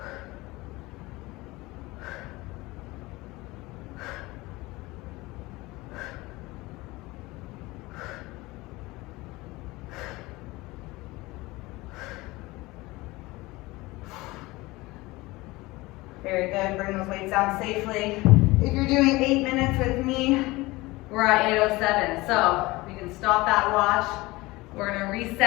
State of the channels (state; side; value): quieter; right; 21.2 dB